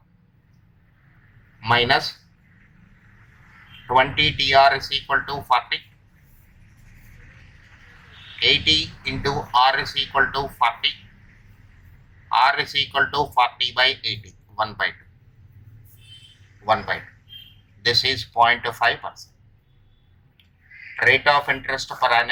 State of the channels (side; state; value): both; identical; correlation 1.00